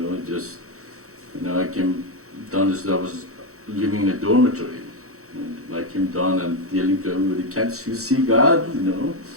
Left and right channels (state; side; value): late; left; 0.64 ms